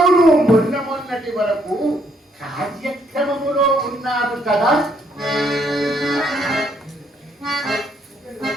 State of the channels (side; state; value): both; normal; correlation 0.70